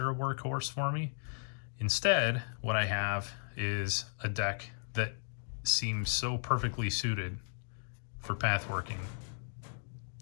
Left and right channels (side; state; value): right; silent; digital silence